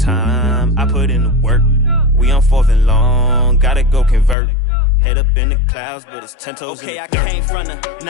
I put in the work. We on 4th and long. Gotta go convert. Head up in the clouds, but it's 10 toes in the dirt. Okay, I came from the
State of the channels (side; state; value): right; drops out; at 4.4 s